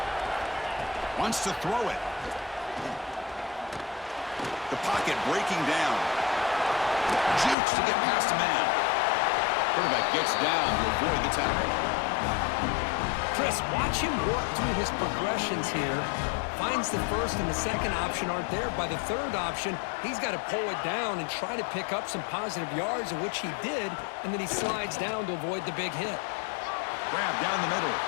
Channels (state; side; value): drops out; right; at 7.6 s